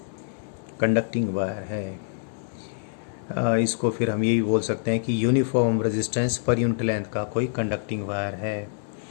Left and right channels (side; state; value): right; silent; digital silence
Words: कंडक्टिंग वायर है, इसको फिर हम ये भी बोल सकते हैं कि uniform resistance per unit length का कोई कंडक्टिंग वायर है,